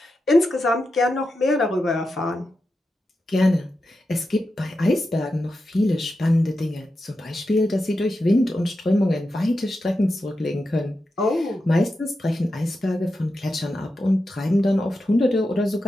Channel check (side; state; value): both; normal; correlation 0.89